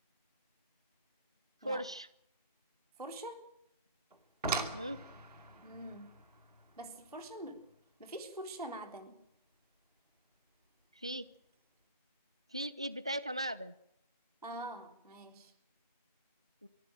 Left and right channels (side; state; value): both; inverted; correlation -0.32